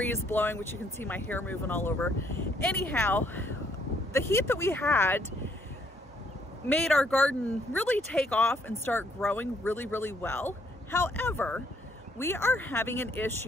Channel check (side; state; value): both; normal; correlation 0.68